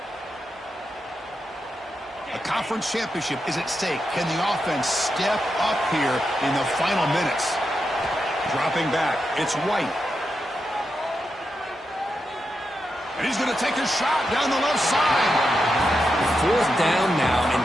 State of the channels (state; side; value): normal; both; correlation 0.87